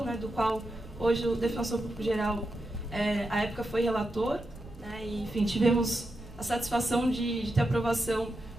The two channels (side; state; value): right; noise; rumble, 18 dB below the sound